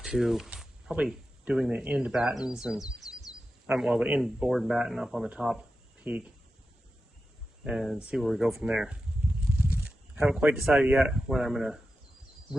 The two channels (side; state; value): both; normal; correlation 0.91